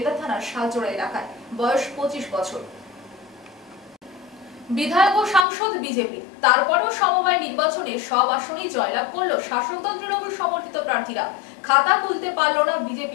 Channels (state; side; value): drops out; right; at 5.5 s